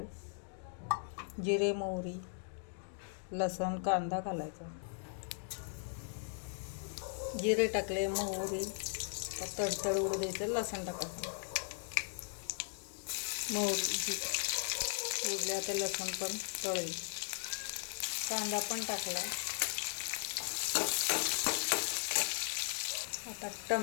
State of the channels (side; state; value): right; silent; digital silence